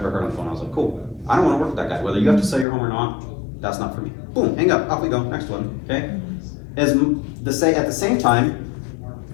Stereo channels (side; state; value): right; drops out; at 2.7 s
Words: ever heard on the phone. I was like, cool, I don't want to work with that guy. Whether you have to sell your home or not, that's not for me. Boom, hang up, off we go, next one, okay? At the same time,